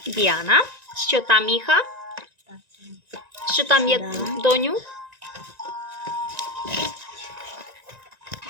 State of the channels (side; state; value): left; late; 1.9 ms